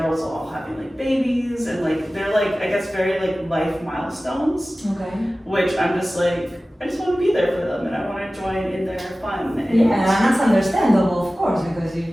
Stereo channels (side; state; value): both; normal; correlation 0.96